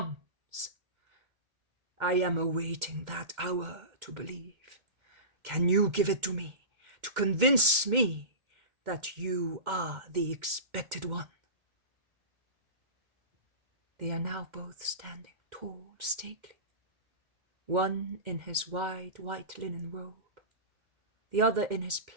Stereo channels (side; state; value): left; late; 2.2 ms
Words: I am awaiting that hour to believe. Can you give it to me, to convince me that you are the expected one? They are now both standing tall, stately, one in his wide white linen robe, the other in his